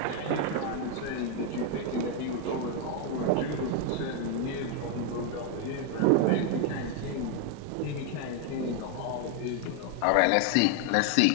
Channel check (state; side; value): different; both; correlation 0.01